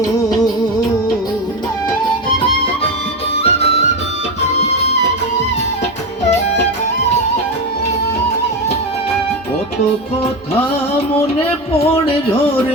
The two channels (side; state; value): both; normal; correlation 0.17